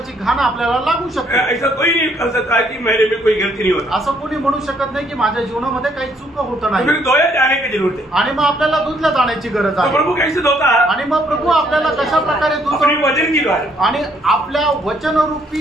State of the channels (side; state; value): both; normal; correlation 0.68